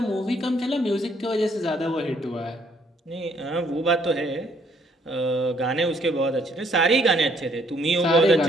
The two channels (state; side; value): normal; both; correlation 0.66